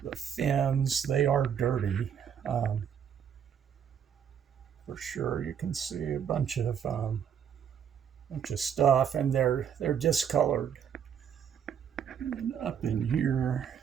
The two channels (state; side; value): quieter; left; 8.3 dB